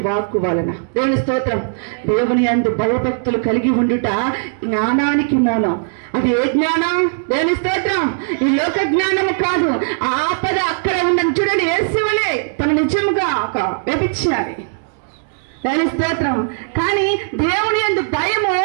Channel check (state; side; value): silent; left; digital silence